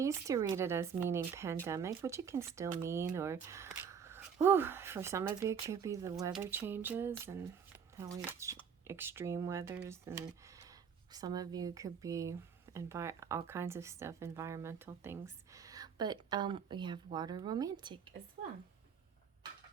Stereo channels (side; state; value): left; quieter; 7.0 dB